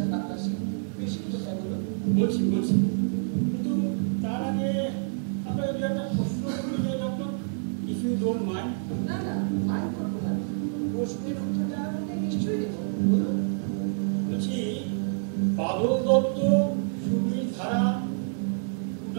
ডাক্তার সিং, বেশি কোথায় বলো। বলছি কিন্তু তার আগে আপনাকে দু একটা প্রশ্ন করতে চাই doctor, if you don't mind. না না, মাইন্ড করবো না। প্রশ্নের উত্তরটা আমাকে নিশ্চয়ই দেবো, বলুন। বলছি বাদল দত্ত, সুবীর ধারা,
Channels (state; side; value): silent; left; digital silence